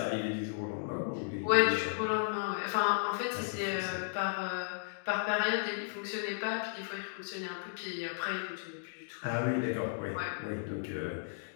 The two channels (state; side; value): silent; right; digital silence